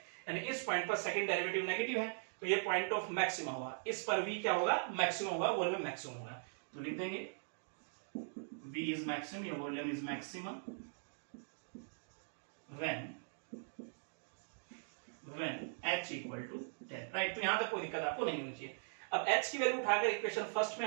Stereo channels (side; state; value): left; silent; digital silence